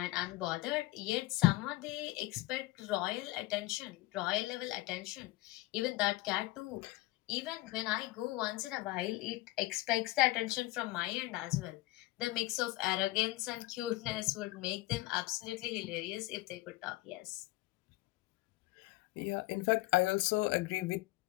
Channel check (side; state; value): right; quieter; 19.0 dB